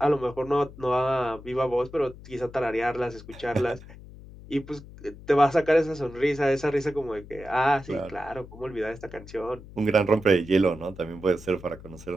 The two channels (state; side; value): noise; left; hum, 17 dB below the sound